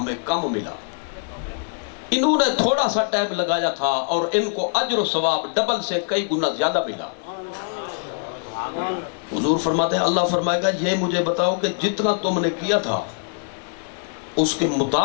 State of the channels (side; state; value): right; silent; digital silence